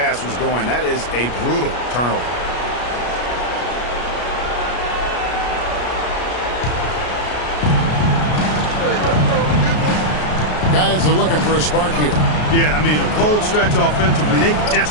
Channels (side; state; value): right; late; 33 ms